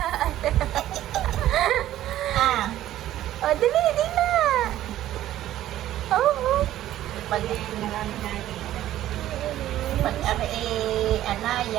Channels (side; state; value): left; quieter; 13.3 dB